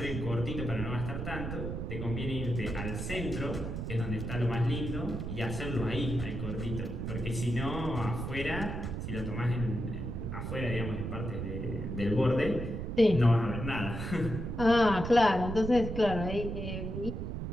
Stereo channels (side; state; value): right; noise; rumble, 4 dB below the sound